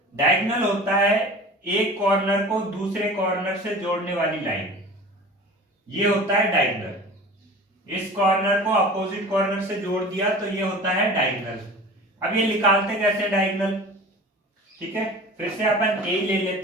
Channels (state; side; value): normal; both; correlation 0.39